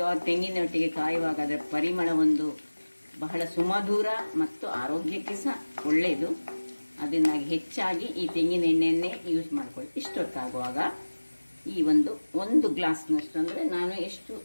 ತೆಂಗಿನೊಟ್ಟಿಗೆ ಕಾಯುವಾಗ ಅದರ ಪರಿಮಳ ಒಂದು ಬಹಳ ಸುಮಧುರ ಮತ್ತು ಆರೋಗ್ಯಕ್ಕೆ ಸಹ ಒಳ್ಳೆಯದು. ಅದರಿಂದಾಗಿ ಹೆಚ್ಚಾಗಿ ಈ ತೆಂಗಿನ ಎಣ್ಣೆಯನ್ನೇ ಯೂಸ್ ಮಾಡ್ಕೊಳ್ಳಿ. ಇಷ್ಟೊತ್ತಾಗುವಾಗ ಈ ಒಂದು ಗ್ಲಾಸ್ನಷ್ಟು, ಅಂದರೆ ನಾನು ಎಷ್ಟು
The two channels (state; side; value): inverted; both; correlation -1.00